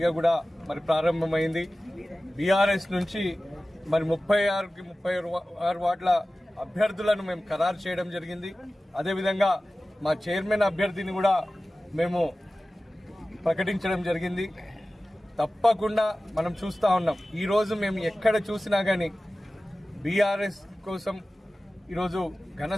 కూడా ప్రారంభమైంది. బీఆర్ఎస్ నుంచి 36కి 36 వార్డుల అభ్యర్థులను మేము ఖరారు చేయడం జరిగింది. అదేవిధంగా మా చైర్మన్ అభ్యర్థిని కూడా మేము ప్రకటించడం జరిగింది. తప్పకుండా మనం చూస్తూ ఉన్నాం, ఈరోజు మేము ఎక్కడ చూసినా కానీ బీఆర్ఎస్ కోసం ఈరోజు ఘన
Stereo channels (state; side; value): normal; both; correlation 0.96